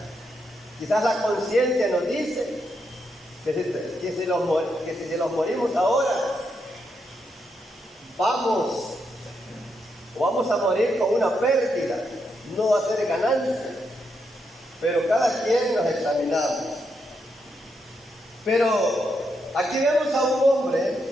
Quizás la conciencia nos dice que si los morimos ahora, vamos a morir con una pérdida, no va a ser ganancia. Pero cada quien nos examinamos. Pero aquí vemos a un hombre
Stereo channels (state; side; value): normal; both; correlation 0.81